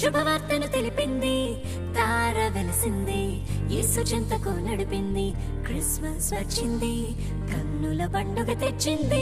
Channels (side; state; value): both; identical; correlation 1.00